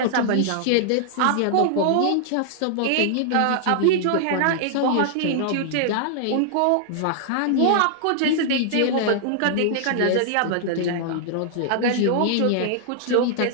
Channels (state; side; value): different; both; correlation -0.01